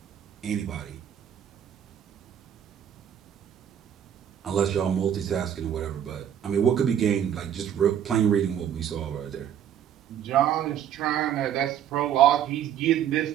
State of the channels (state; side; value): quieter; left; 9.6 dB